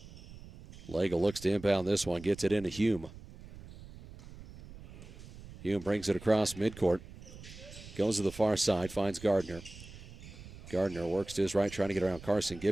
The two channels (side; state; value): right; noise; rumble, 16 dB below the sound